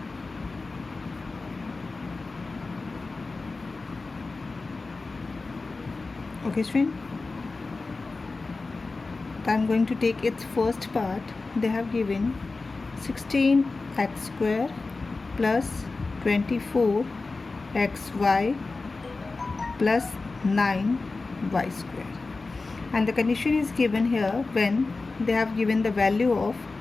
Okay student. I'm going to take its first part. They have given 16x square plus 24xy plus 9y square, and the condition is given here when they have given the value of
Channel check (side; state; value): right; quieter; 3.7 dB